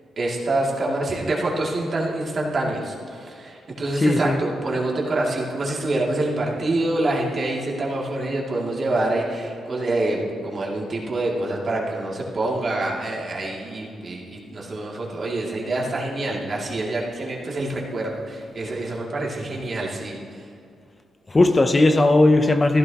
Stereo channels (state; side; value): normal; both; correlation 0.89